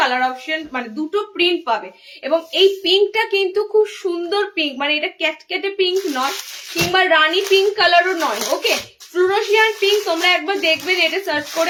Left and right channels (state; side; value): identical; both; correlation 1.00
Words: অপশন মানে দুটো প্রিন্ট পাবে। এবং এই পিঙ্কটা কিন্তু খুব সুন্দর পিঙ্ক, মানে এটা ক্যাটকেটে পিঙ্ক নয় কিংবা রানী পিঙ্ক কালারও নয়, ওকে। ফ্লুরোসিয়ান পিঙ্ক তোমরা একবার দেখবে, এটা সার্চ